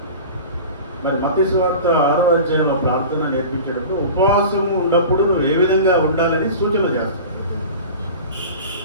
మరి మత్తయి సువార్త 6వ అధ్యాయంలో ప్రార్థన నేర్పించేటప్పుడు ఉపవాసం ఉన్నప్పుడు నువ్వు ఏ విధంగా ఉండాలని సూచన చేస్తావు.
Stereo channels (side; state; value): both; inverted; correlation -0.36